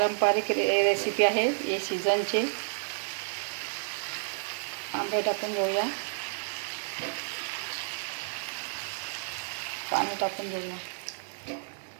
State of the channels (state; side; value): silent; left; 57 dB below the other